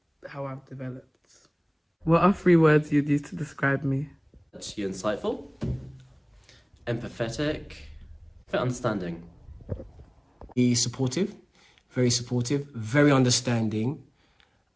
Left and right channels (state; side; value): identical; both; correlation 1.00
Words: how I've developed. What are 3 words you'd use to describe me? You're insightful, empathetic, understanding. Supportive, very understanding,